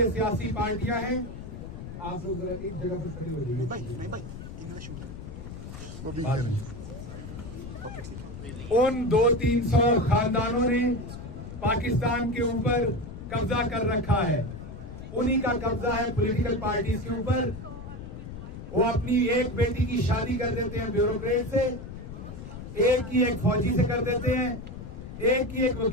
सियासी पार्टियां हैं। आप लोग जरा एक जगह पर खड़े हो जाइए। उन 200-300 खानदानों ने पाकिस्तान के ऊपर कब्जा कर रखा है। उन्हीं का कब्जा है पॉलिटिकल पार्टीज के ऊपर। वो अपनी एक बेटी की शादी कर देते हैं ब्यूरोक्रेट से, एक की एक फौजी से कर देते हैं, एक की एक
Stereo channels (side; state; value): left; noise; rumble, 10 dB below the sound